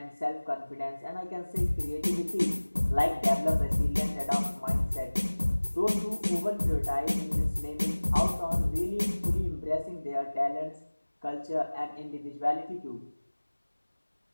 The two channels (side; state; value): both; inverted; correlation -1.00